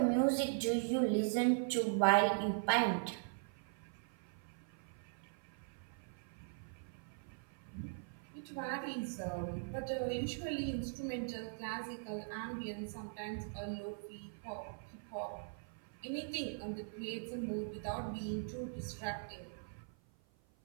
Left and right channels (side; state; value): left; silent; 51 dB below the other